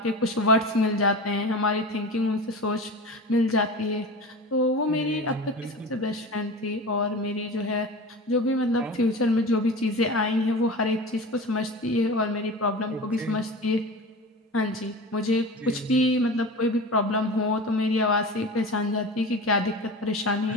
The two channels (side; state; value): both; normal; correlation 0.32